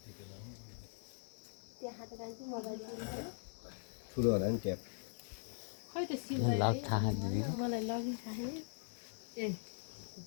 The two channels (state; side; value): silent; right; digital silence